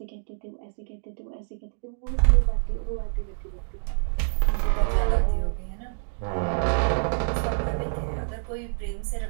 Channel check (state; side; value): silent; left; digital silence